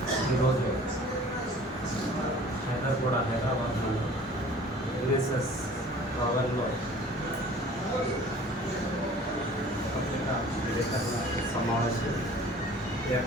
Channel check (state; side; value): normal; both; correlation 0.47